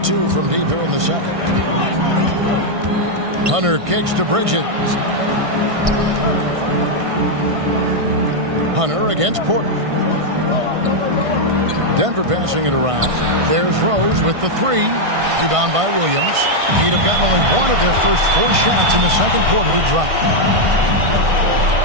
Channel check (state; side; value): late; left; 1.5 ms